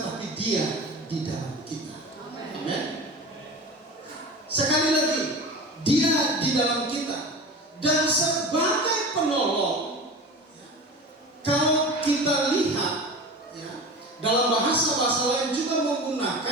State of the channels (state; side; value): normal; both; correlation 0.32